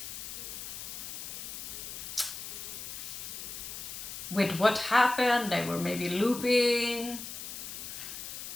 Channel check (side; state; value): left; noise; hiss, 8 dB below the sound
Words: with what happened. They were maybe looping.